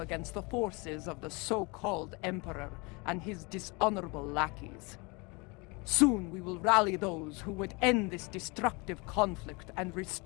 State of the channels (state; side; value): quieter; right; 28.2 dB